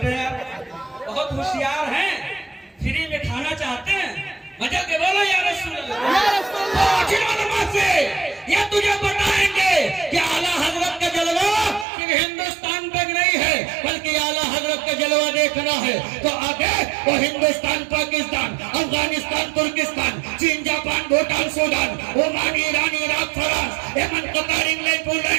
हैं। बहुत होशियार हैं, फ्री में खाना चाहते हैं, मजा के बोलो या रसूल अल्लाह से। ये तुझे बताएंगे कि आला हजरत का जलवा सिर्फ हिंदुस्तान तक नहीं है, बल्कि आला हजरत का जलवा देखना है तो आगे वो हिंदुस्तान, पाकिस्तान, अफगानिस्तान, तुर्किस्तान, चीन, Japan, Bhutan, Sudan, Oman, Iran, Iraq, France, Yemen, Qatar, England,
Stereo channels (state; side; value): drops out; left; at 11.9 s